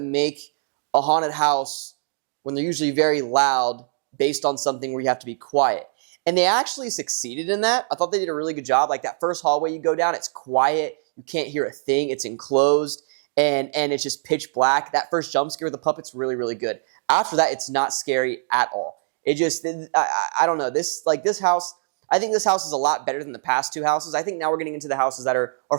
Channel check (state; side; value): silent; left; digital silence